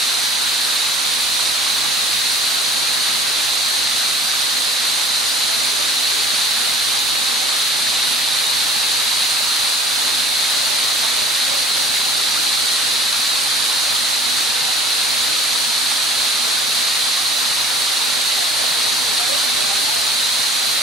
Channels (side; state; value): both; normal; correlation 0.48